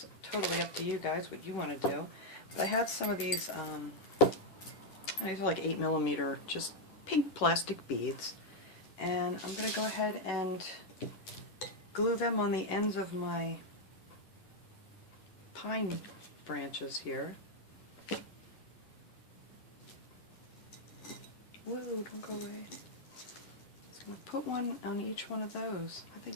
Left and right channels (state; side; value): late; right; 11 ms